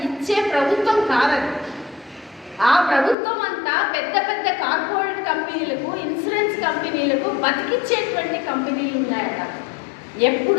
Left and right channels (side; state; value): right; drops out; at 3.2 s